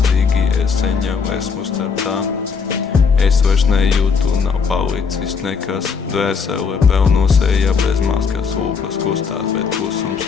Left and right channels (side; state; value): right; quieter; 5.5 dB